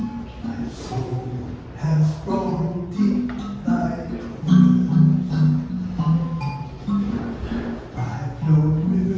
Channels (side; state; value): both; identical; correlation 1.00